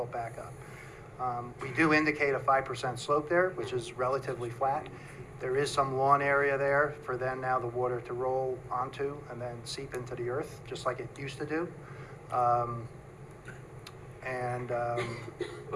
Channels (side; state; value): both; identical; correlation 1.00